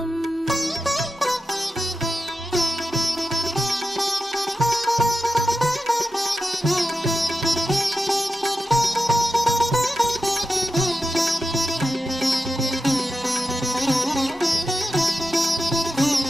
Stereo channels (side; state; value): both; normal; correlation 0.90